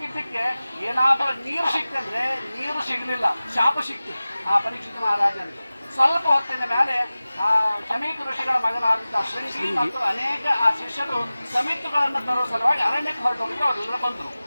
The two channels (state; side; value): inverted; both; correlation -0.97